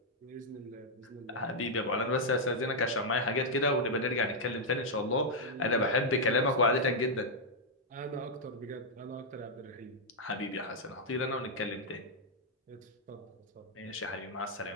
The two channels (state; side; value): normal; both; correlation -0.03